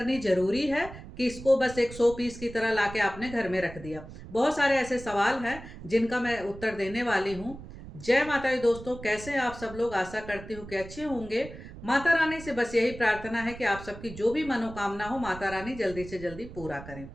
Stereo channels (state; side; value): noise; right; rumble, 14 dB below the sound